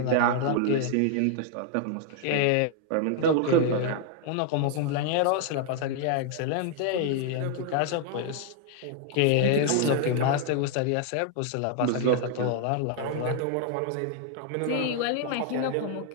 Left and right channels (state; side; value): different; both; correlation 0.00